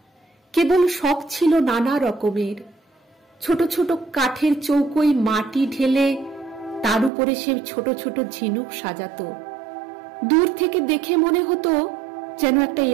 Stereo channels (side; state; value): left; drops out; at 7.1 s